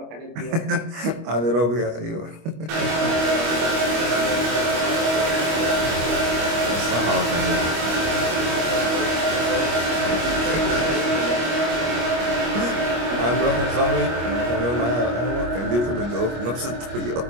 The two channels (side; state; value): left; late; 25 ms